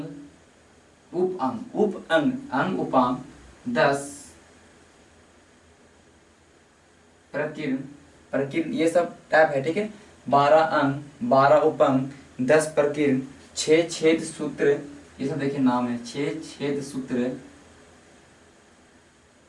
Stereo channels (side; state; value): both; identical; correlation 1.00